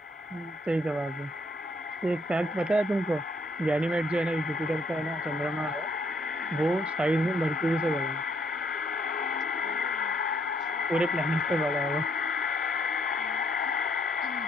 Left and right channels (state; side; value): normal; both; correlation 0.70